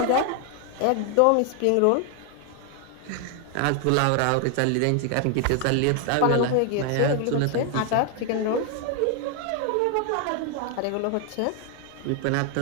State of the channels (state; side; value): different; both; correlation 0.00